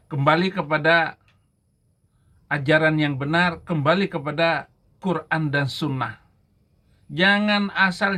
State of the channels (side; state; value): both; identical; correlation 1.00